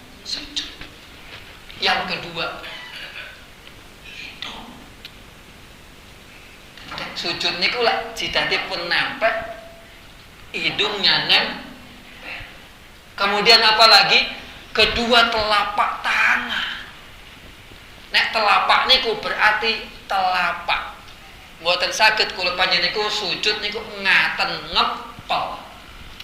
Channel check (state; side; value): identical; both; correlation 1.00